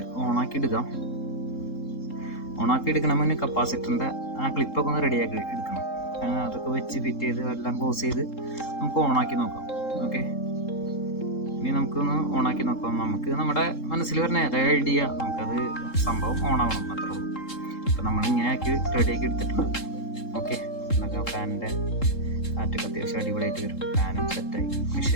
ഓണാക്കി എടുക്കാം. ഓണാക്കി എടുക്കണം മുന്നേ കപ്പാസിറ്ററിൻ്റെ ആ ക്ലിപ്പൊക്കെ ഒന്ന് റെഡിയാക്കി എടുക്കണം. അതൊക്കെ വെച്ച് ഫിറ്റ് ചെയ്ത് എല്ലാം ക്ലോസ് ചെയ്ത് നമുക്ക് ഓണാക്കി നോക്കാം. ഓക്കെ, ഇനി നമുക്കൊന്ന് ഓണാക്കി നോക്കാം. നമുക്ക് നമ്മുടെ മനസ്സിൽ വരുന്ന ഏതായ ഐഡിയ നമുക്കത് സംഭവം ഓണാവണം, അത്രേ ഉള്ളൂ. അപ്പോൾ നമ്മൾ ഇങ്ങനെ ആക്കി റെഡിയാക്കി എടുത്തിട്ടുണ്ട്. ഓക്കെ, എന്നൊക്കെ ഫാനിൻ്റെ കാറ്റൊക്കെ അത്യാവശ്യം അടിപൊളിയായിട്ട് വരും. ഫാനും സെറ്റായി,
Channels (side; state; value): right; late; 3.7 ms